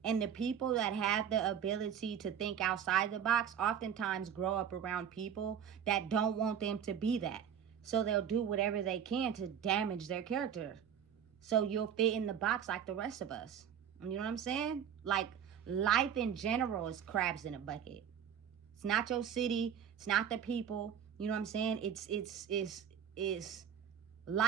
And the people that have the ability to think outside the box oftentimes grow up around people that don't want them to be that. So they'll do whatever they can to damage their character. So you'll fit in the box like the rest of us. You know what I'm saying? Like, life in general is crabs in a bucket. It's not your city. It's not the people. You know what I'm saying? It's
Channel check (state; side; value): quieter; left; 8.5 dB